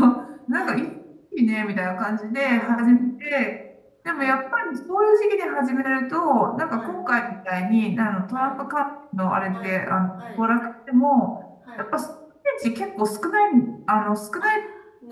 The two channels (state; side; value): identical; both; correlation 1.00